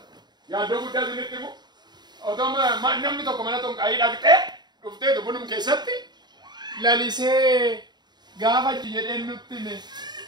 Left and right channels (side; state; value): left; late; 0.21 ms